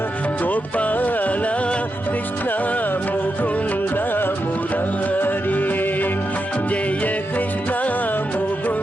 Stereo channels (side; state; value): both; normal; correlation 0.87